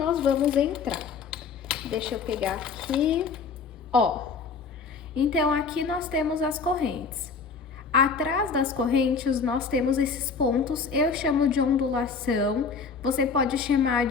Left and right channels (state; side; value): quieter; right; 5.2 dB